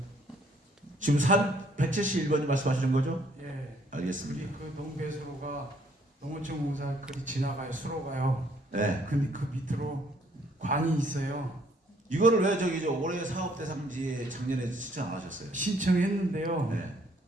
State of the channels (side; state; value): both; normal; correlation 0.65